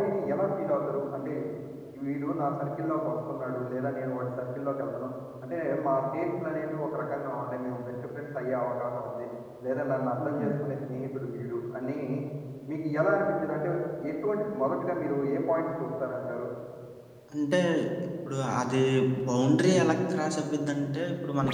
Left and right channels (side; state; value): both; identical; correlation 1.00